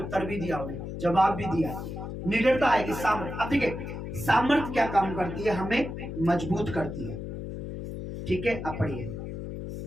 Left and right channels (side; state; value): left; noise; hum, 7 dB below the sound